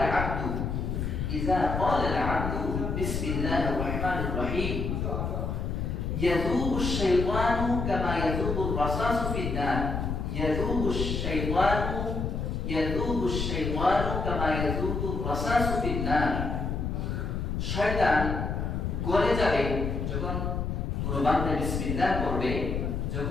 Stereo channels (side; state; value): left; noise; rumble, 2 dB below the sound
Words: আল-আবদু বিসমিল্লাহির রাহমানির রাহিম ইয়াযুবু আশ-শাইতানু কামা ইয়াযুবু আর-রাসাসু ফিন-নার, ইয়াযুবু আশ-শাইতানু কামা ইয়াযুবু আর-রাসাসু ফিন-নার, শয়তান গলে যাবে যখন কোনো বান্দা বিসমিল্লাহ করবে,